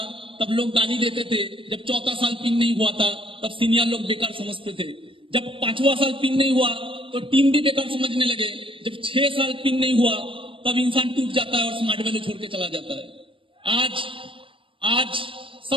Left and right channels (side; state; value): left; late; 0.25 ms